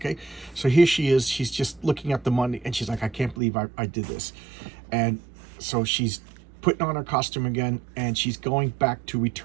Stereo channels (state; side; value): drops out; left; at 3.4 s